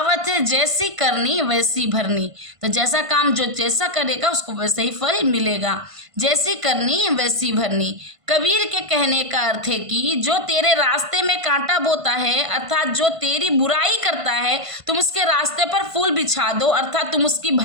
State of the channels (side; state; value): left; late; 1.5 ms